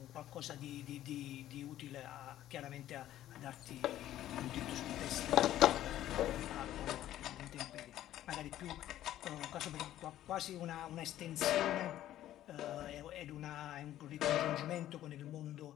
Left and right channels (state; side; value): quieter; right; 13.0 dB